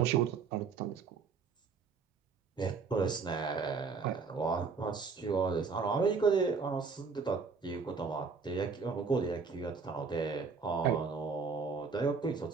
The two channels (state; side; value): quieter; left; 5.1 dB